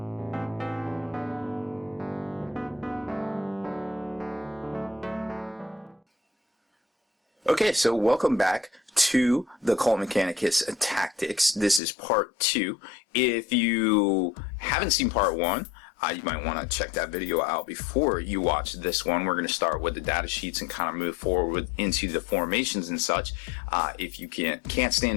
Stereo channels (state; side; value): drops out; right; at 11.8 s